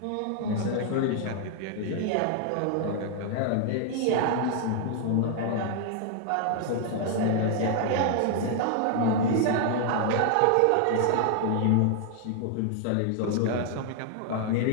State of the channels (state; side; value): different; both; correlation 0.00